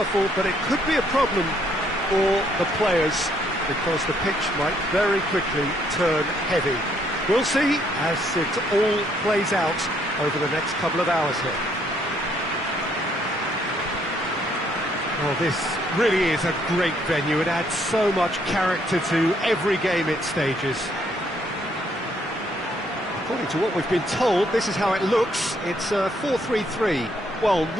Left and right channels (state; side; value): normal; both; correlation 0.69